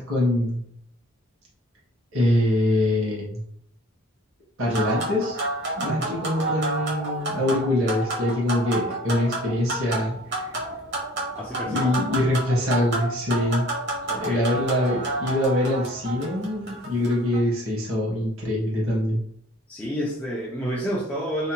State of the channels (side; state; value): both; normal; correlation 0.52